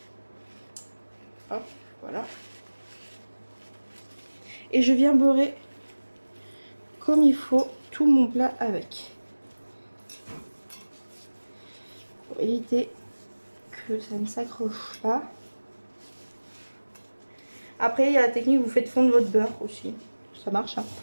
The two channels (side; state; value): both; inverted; correlation -1.00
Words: Hop, voilà. Et je viens beurrer comme il faut tout mon plat avec. Pour éviter que ça ne s'accroche pas. Après, il y a la technique, vous faites fondre votre beurre aussi. Ça marche, hein,